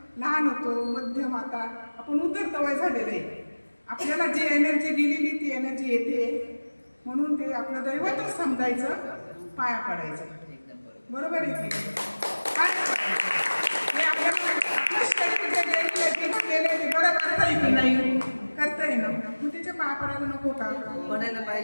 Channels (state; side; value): inverted; both; correlation -1.00